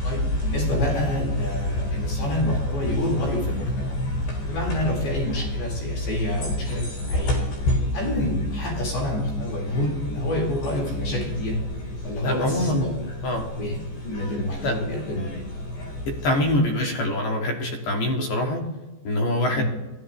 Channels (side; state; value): right; late; 14 ms